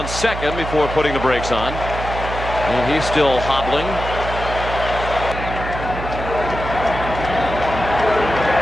second before putting the brakes on. And he's still hobbling.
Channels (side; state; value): right; noise; hum, 7 dB below the sound